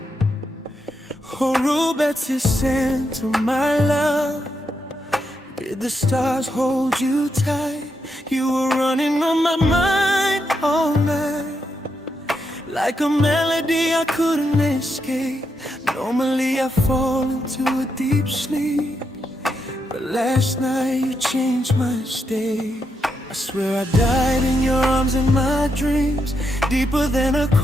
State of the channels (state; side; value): normal; both; correlation 0.82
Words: Oh, robetse, sentle, my love. Did the stars hold you tight? You were running on my mind all night, like a melody I couldn't escape. Normally I fall into a deep sleep, but last night you changed my state. I swear I died in your arms in my dreams, deeper than a